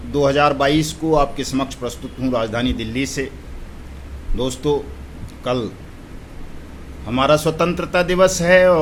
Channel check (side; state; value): both; identical; correlation 1.00